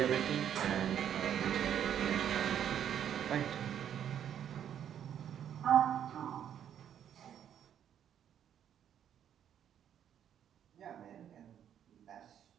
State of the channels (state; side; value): quieter; left; 9.6 dB